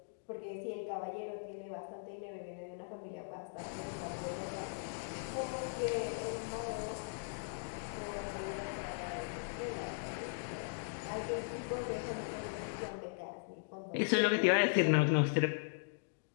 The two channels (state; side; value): silent; right; digital silence